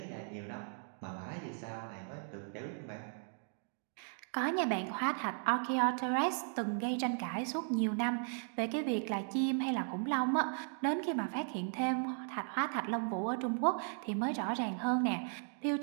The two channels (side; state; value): left; silent; 53 dB below the other